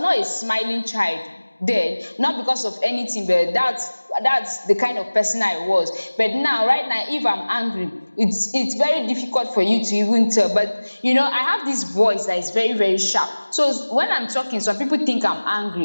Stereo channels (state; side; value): inverted; both; correlation -1.00